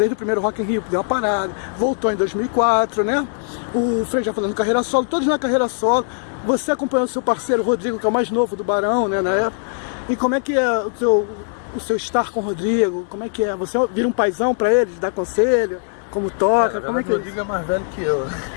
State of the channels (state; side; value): silent; right; 64 dB below the other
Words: primeiro Rock in Rio, deu uma parada, voltou em 2004, né? O Frei já falando carreira solo, todos na carreira solo. Você acompanhou o seu parceiro Rodrigo, que é o mais novo do Barão, né, na época. E como é que é o seu estar com o Rodrigo? Como é que é? Você vira um paizão pra eles, dá conselho? Como toca? Como é que é? O Rodrigo é mais velho que eu.